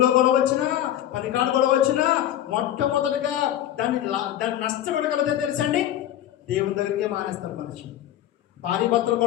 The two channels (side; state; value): right; quieter; 11.9 dB